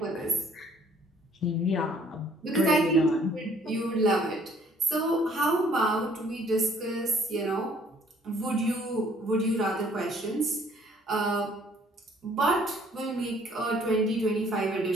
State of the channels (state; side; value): normal; both; correlation 0.60